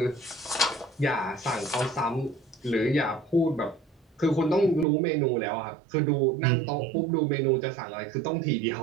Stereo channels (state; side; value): drops out; left; at 4.9 s